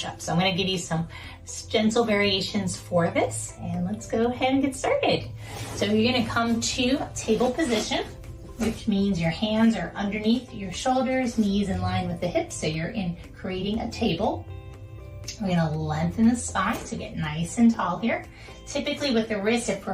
So I'm going to give you some gentle variations for this, and let's go ahead and get started. So you're going to come to table position, which means your hands are underneath your shoulders, knees in line with the hips. So you're creating a table. We're going to lengthen the spine to get nice and tall here. Typically with the wrists, if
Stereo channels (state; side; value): identical; both; correlation 1.00